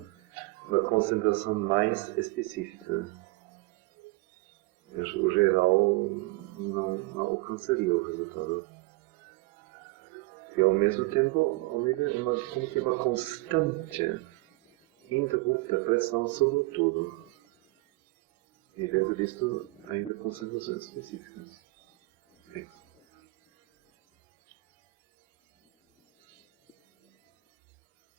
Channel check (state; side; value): quieter; left; 22.4 dB